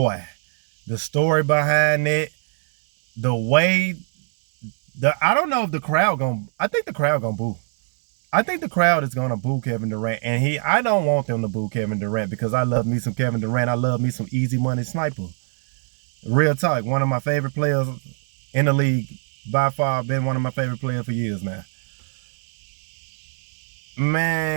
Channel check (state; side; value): silent; left; 60 dB below the other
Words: the story behind it, the way I don't know if the crowd I think the crowd gonna boo. I think the crowd is gonna boo Kevin Durant, and I don't want them to boo Kevin Durant because I love me some Kevin Durant. I love me some easy money sniper. Real talk, one of my favorite players in the league, by far, been one of my favorite players for years now.